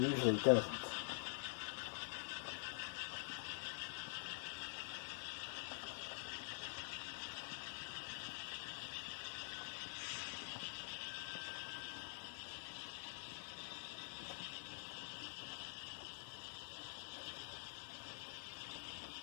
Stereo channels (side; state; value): right; silent; digital silence